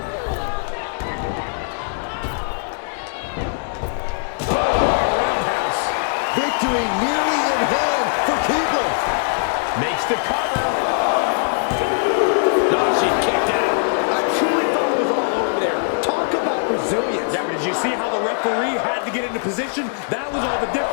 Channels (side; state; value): right; silent; digital silence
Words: Roundhouse. Victory nearly in hand for Keibler. Makes the cover. Nah, she kicked out. I truly thought it was all over there. Talk about resilience. Yeah, but did you see how the referee had to get into position? That was all the